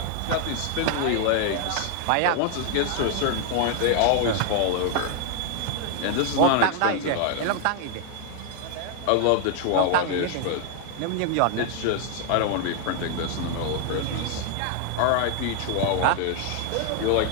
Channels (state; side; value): different; both; correlation 0.00